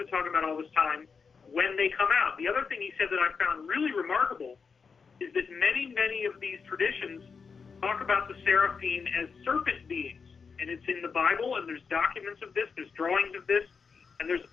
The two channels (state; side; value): quieter; right; 5.5 dB